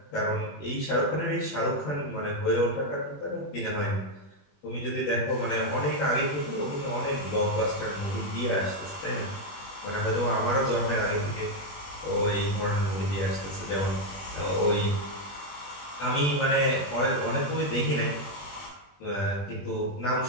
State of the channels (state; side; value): late; right; 21 ms